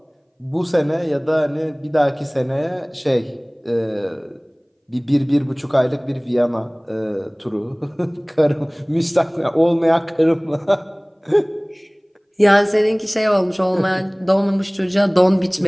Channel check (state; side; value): identical; both; correlation 1.00